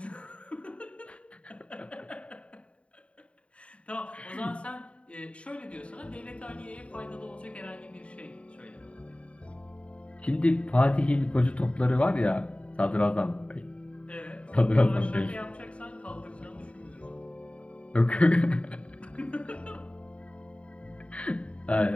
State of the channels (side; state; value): right; late; 0.062 ms